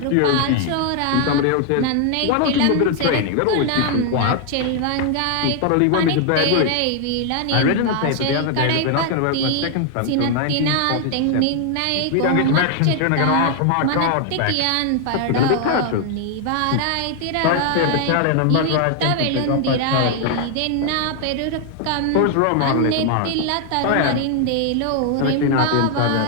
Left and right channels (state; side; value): different; both; correlation 0.00